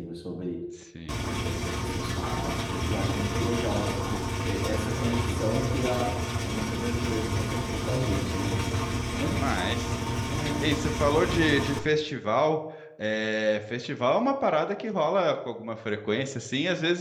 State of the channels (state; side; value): identical; both; correlation 1.00